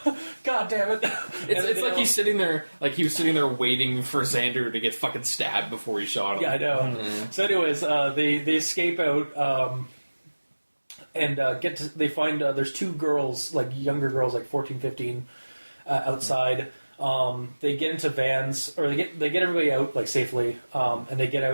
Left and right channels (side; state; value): both; inverted; correlation -1.00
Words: God damn it. It's like he's sitting there, like he was sitting there waiting for Xander to get fucking stabbed before he shot him. Yeah, I know. Mm-hmm. So anyways, they escape out and they find there's two girls, like younger girls, like 14, 15, outside. They get into vans, or they get everybody out like safely, and they get